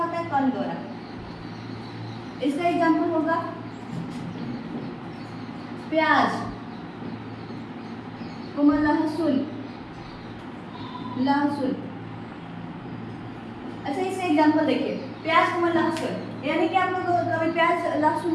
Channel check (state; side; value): identical; both; correlation 1.00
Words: है, कण द्वारा। इसका एग्जाम्पल होगा प्याज, लहसुन, लहसुन। अच्छा इसका एग्जाम्पल देखिए, प्याज को लहसुन, यानी कि आप लोग कभी प्याज लहसुन